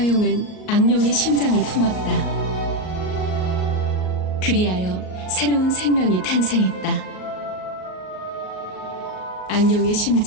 용은 악룡의 심장을 품었다. 그리하여 새로운 생명이 탄생했다. 악룡의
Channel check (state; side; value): late; right; 38 ms